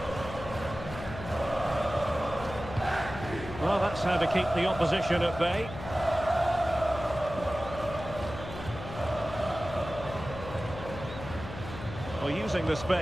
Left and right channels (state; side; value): noise; left; hum, 11 dB below the sound